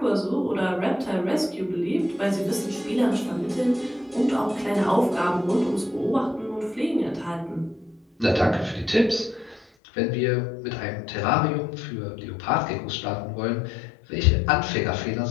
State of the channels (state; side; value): drops out; right; at 9.7 s